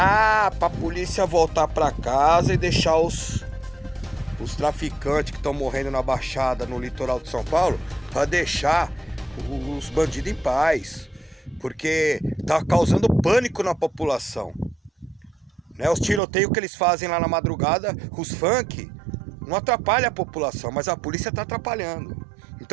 para a polícia voltar para casa e deixar os traficantes que estão morrendo na Baixada, no litoral de São Paulo, para deixar os bandidos em paz, porque tá causando pânico na população, né? Os tiroteios que eles fazem lá na madrugada, os funk, não atrapalha a população, mas a polícia tá atrapalhando.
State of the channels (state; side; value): drops out; left; at 16.2 s